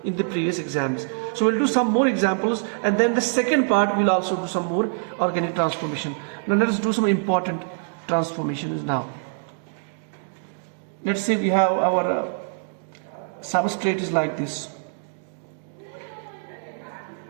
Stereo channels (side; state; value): left; silent; digital silence